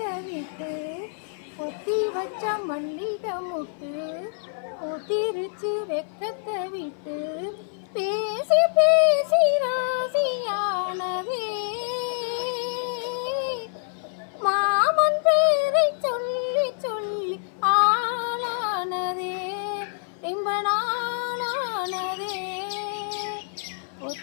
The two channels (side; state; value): right; silent; 57 dB below the other